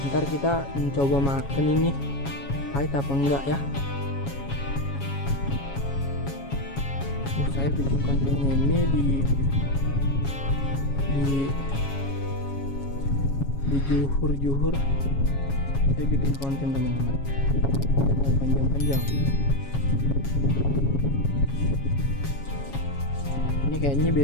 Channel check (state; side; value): late; right; 7.3 ms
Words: ntar kita mencoba makan ini pahit apa enggak ya. Saya bikin kontennya ini di juhur saya bikin konten teman-teman, panjang-panjang. Ini kayaknya